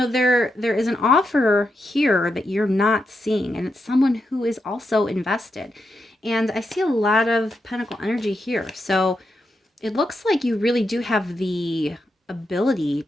is an offer here that you're not seeing, and it's someone who is also invested. And I see a lot of Pentacle energy here. So it looks like you really do have the ability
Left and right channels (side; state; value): both; normal; correlation 0.85